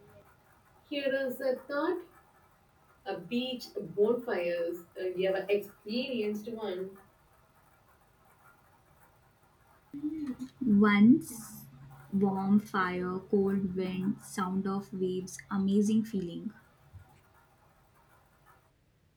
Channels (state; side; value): identical; both; correlation 1.00